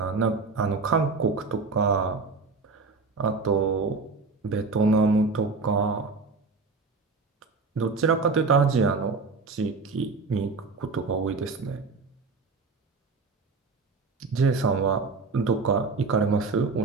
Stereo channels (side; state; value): left; quieter; 4.3 dB